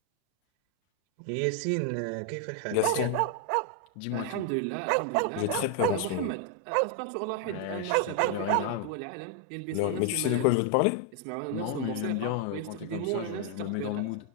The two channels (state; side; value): different; both; correlation 0.00